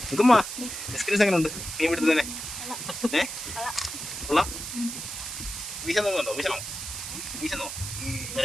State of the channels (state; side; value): noise; right; hiss, 7 dB below the sound